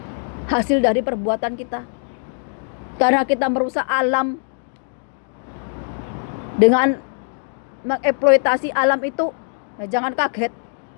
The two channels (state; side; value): silent; right; 64 dB below the other